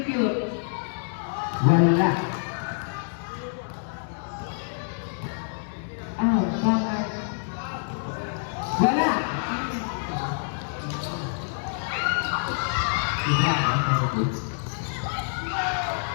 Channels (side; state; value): right; silent; 60 dB below the other